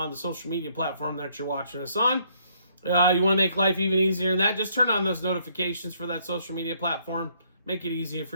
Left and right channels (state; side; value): inverted; both; correlation -0.68